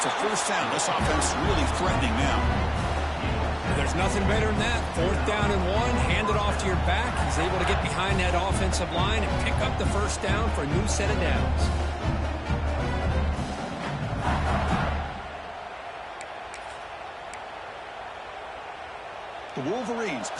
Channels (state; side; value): identical; both; correlation 1.00